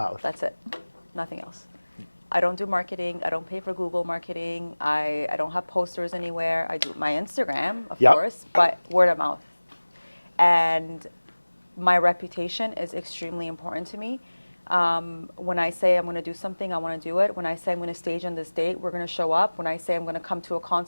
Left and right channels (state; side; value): inverted; both; correlation -1.00